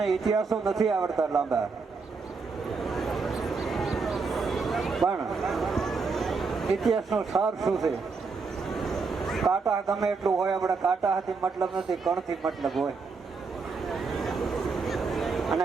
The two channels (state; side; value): quieter; left; 4.7 dB